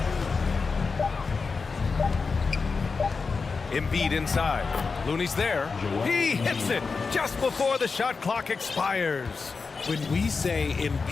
Embiid inside. Looney's there. He hits it just before the shot clock expires. When we say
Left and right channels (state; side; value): quieter; right; 4.7 dB